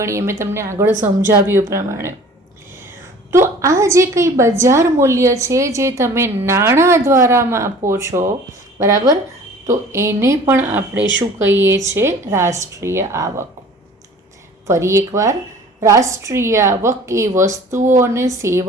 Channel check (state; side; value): normal; both; correlation 0.47